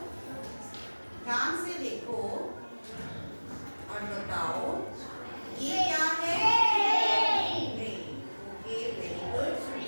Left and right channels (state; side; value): inverted; both; correlation -1.00